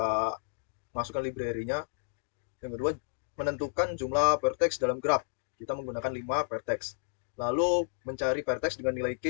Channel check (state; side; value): silent; right; digital silence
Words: masukkan library-nya. Yang kedua, menentukan jumlah vertex dalam graf. Kita menggunakan 5 vertex. Lalu mencari vertex dengan nilai